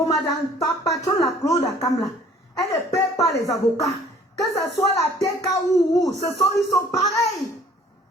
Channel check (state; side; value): normal; both; correlation 0.54